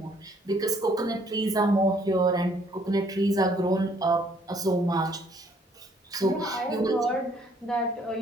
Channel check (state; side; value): normal; both; correlation 0.64